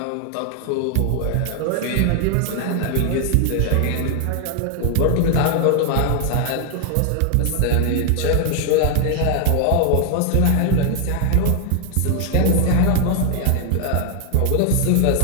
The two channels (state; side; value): different; both; correlation 0.00